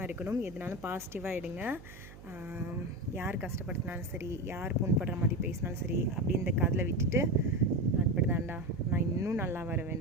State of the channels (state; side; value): noise; right; hum, 17 dB below the sound